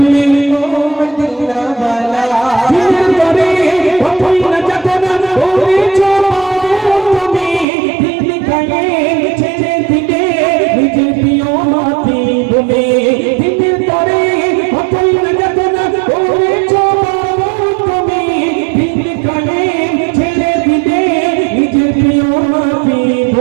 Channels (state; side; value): drops out; left; at 7.7 s